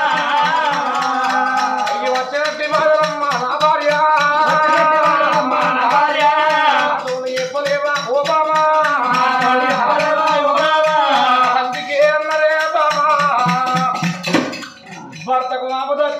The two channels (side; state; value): both; identical; correlation 1.00